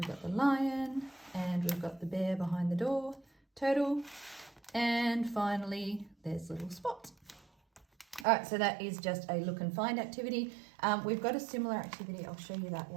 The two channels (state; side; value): drops out; left; at 8.2 s